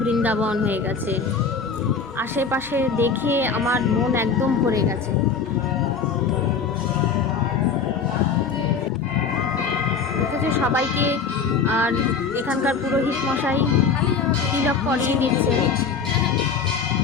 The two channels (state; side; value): quieter; right; 5.5 dB